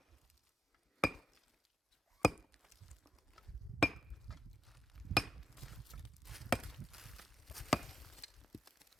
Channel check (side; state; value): both; normal; correlation 0.86